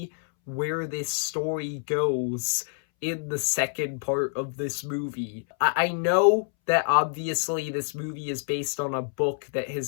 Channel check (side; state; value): right; silent; 60 dB below the other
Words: where this story goes in the second part of this movie. I know that obviously this movie is based on a book that